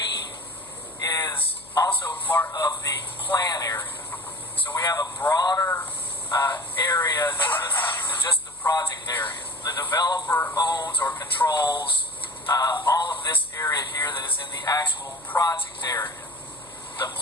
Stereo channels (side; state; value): left; noise; hum, 27 dB below the sound